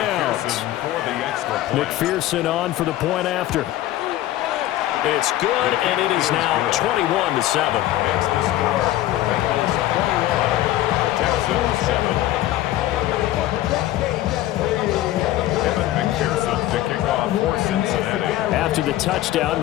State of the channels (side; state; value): right; quieter; 14.5 dB